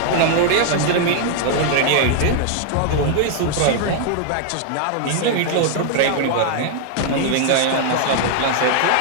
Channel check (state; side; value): different; both; correlation 0.00